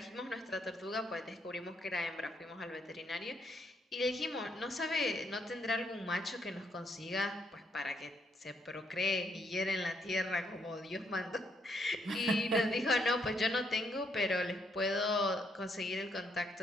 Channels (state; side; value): normal; both; correlation 0.74